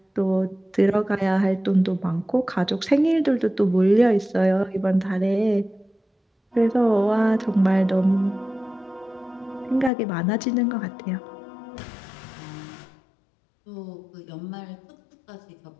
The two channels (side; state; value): right; drops out; at 9.9 s